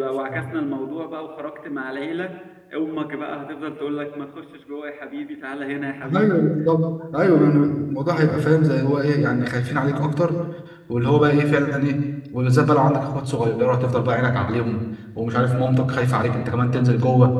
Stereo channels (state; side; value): identical; both; correlation 1.00